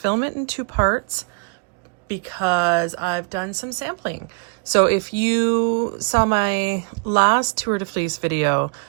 it in two parts because I've done some sampling. So if you saw my last Tour de Fleece video,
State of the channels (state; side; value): quieter; left; 33.8 dB